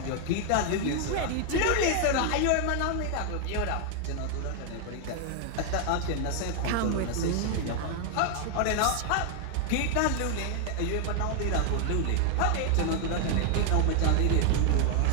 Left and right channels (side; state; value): both; different; correlation 0.00